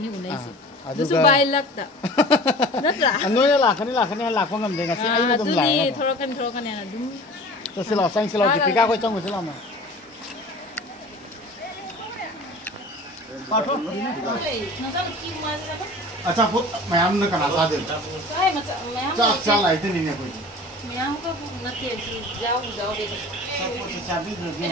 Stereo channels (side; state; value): both; normal; correlation 0.41